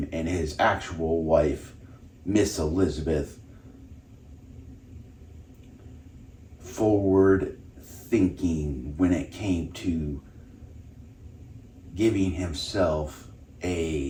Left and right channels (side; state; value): both; identical; correlation 1.00